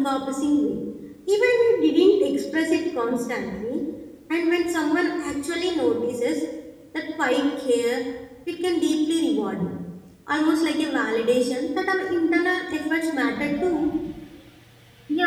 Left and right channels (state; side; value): identical; both; correlation 1.00